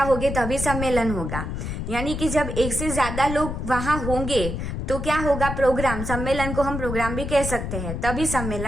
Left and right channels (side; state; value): left; noise; rumble, 4 dB below the sound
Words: होंगे तभी सम्मेलन होगा। यानी कि जब एक से ज्यादा लोग वहां होंगे तो क्या होगा? प्रोग्राम। सम्मेलन को हम प्रोग्राम भी कह सकते हैं, तभी